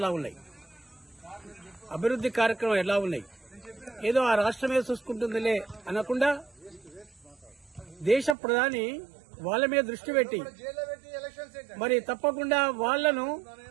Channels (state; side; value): drops out; left; at 8.3 s